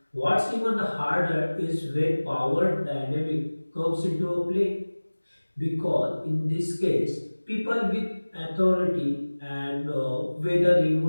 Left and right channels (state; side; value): inverted; both; correlation -1.00